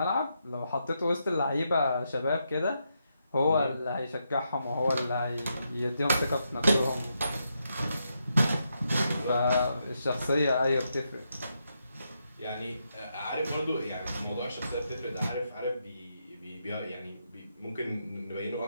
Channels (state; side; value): inverted; both; correlation -0.82